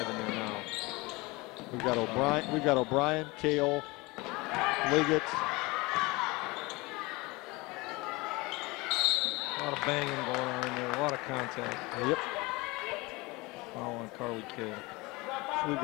in there now. We've got O'Brien, Kale, Liggett. A lot of banging going on in there. A lot of contact. Yep. Foul on Carly Kale. So we've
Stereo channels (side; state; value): right; quieter; 23.7 dB